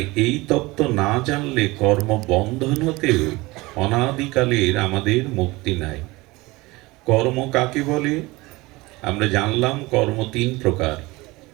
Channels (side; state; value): left; quieter; 21.7 dB